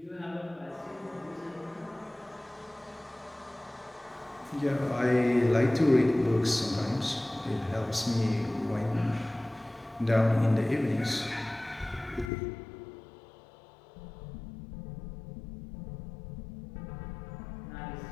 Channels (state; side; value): drops out; right; at 12.3 s